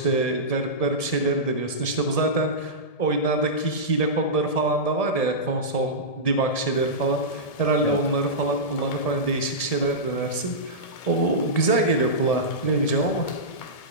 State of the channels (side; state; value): right; late; 1.7 ms